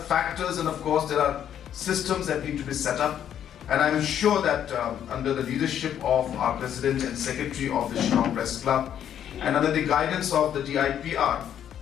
factors, and of course there are systems that need to be set up, and I'm sure that under the leadership of our President and Secretary of the Shillong Press Club and under the guidance of the DIPR,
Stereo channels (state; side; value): quieter; right; 9.8 dB